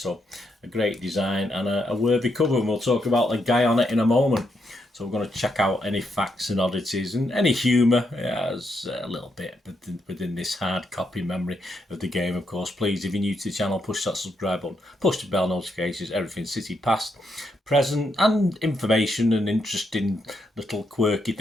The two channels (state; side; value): normal; both; correlation 0.79